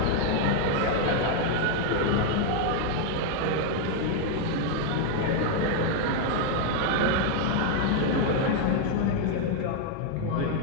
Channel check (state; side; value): different; both; correlation 0.00